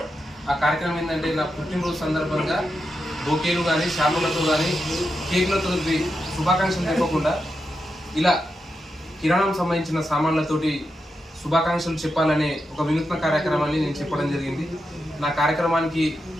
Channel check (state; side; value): normal; both; correlation 0.87